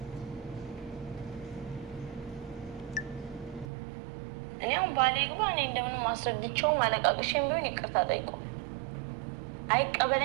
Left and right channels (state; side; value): drops out; left; at 3.7 s